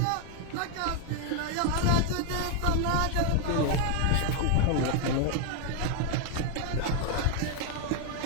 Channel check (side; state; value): both; different; correlation 0.01